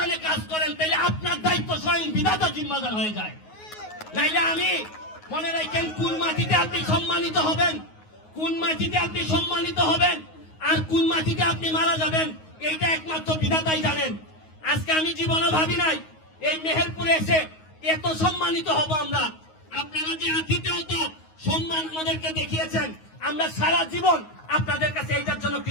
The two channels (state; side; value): late; right; 9.4 ms